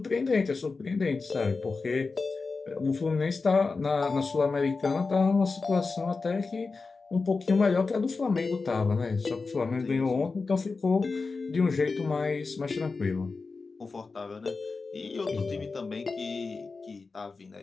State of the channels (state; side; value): quieter; right; 4.2 dB